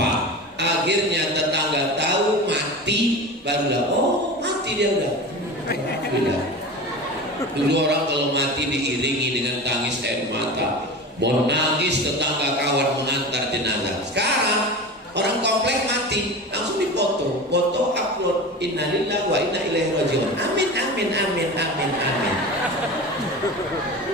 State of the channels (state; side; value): normal; both; correlation 0.31